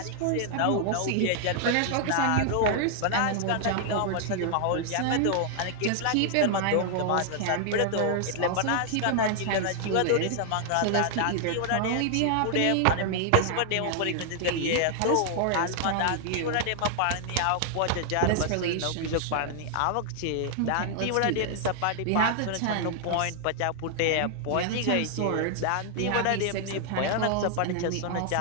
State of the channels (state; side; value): different; both; correlation 0.00